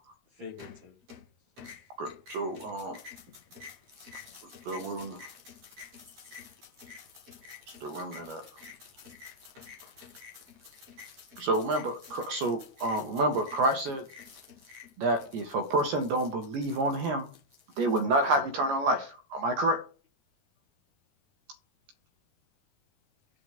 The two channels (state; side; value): late; left; 15 ms